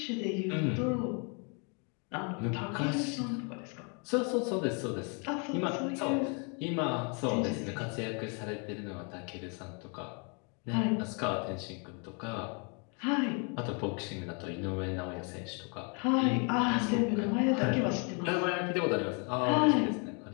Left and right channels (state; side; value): quieter; right; 36.0 dB